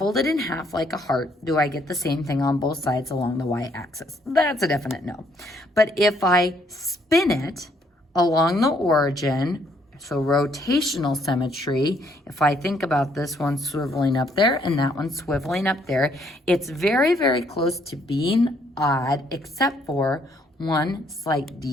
it in half like a heart, do I get the same thing on both sides along the y-axis? That's a definite no. But if I spin it along the origin, so rotational symmetry, if I think about this one swiveling up there and that one swiveling up there, it's very, very close to being odd, except for one slight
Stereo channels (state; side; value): normal; both; correlation 0.68